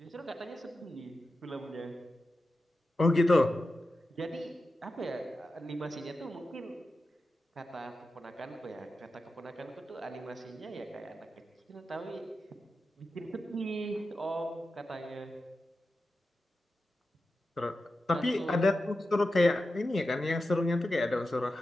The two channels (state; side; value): normal; both; correlation 0.91